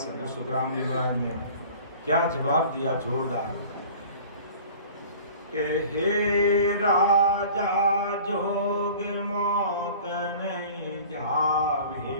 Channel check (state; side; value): inverted; both; correlation -0.45